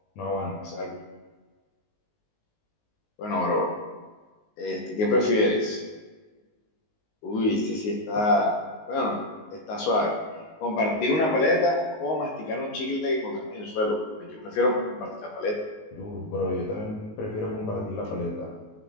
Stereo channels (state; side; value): late; right; 19 ms